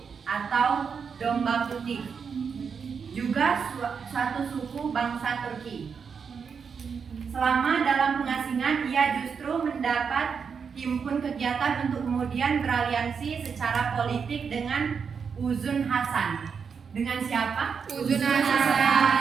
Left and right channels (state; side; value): quieter; left; 6.2 dB